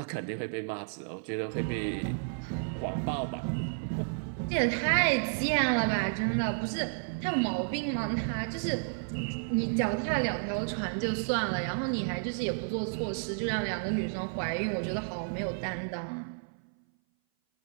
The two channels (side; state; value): left; silent; 57 dB below the other